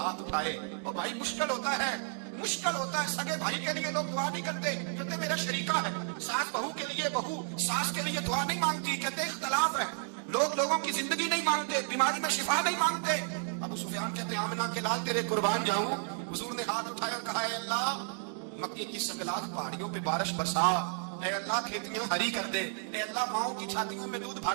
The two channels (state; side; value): silent; left; 56 dB below the other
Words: उठाए, और भाई मुश्किल होता है مشکل ہوتا ہے. سگے بھائی کے لیے لوگ دعا نہیں کرتے, کہتے میرا شریکہ ہے. ساس بہو کے لیے بہو ساس کے لیے دعا نہیں مانگتی, کہتے اختلاف ہے. لوگ لوگوں کی زندگی نہیں مانگتے, بیماری میں شفا نہیں مانگتے. ابو سفیان کہتے ہیں آمنہ کے لال تیرے قربان جاؤں. حضور نے ہاتھ اٹھایا اور کہا اے اللہ مکے کی سنگلاخ پہاڑیوں پہ بارش برسا, اے اللہ کھیتیاں ہری کر دے, اے اللہ ماؤں کی چھاتیوں میں دودھ